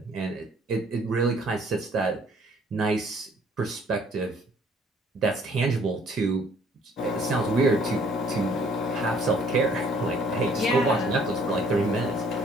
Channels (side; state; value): both; normal; correlation 0.59